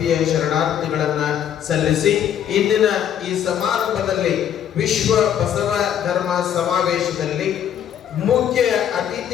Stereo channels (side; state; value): right; quieter; 9.6 dB